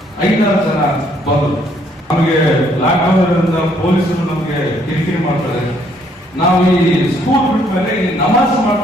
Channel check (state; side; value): normal; both; correlation 0.67